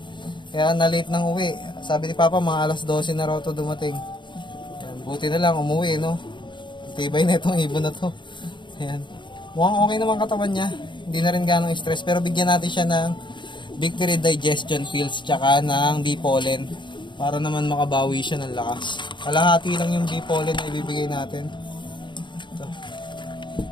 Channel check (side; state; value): right; late; 0.23 ms